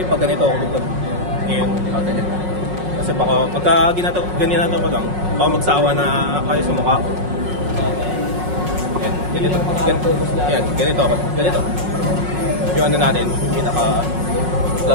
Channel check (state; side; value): late; left; 5.5 ms